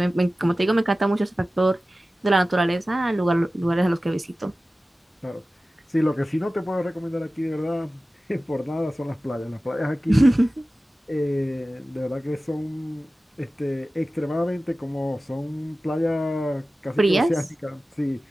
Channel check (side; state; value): both; normal; correlation 0.96